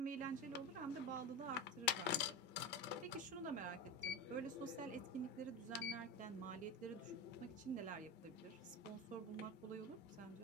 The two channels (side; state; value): both; normal; correlation 0.21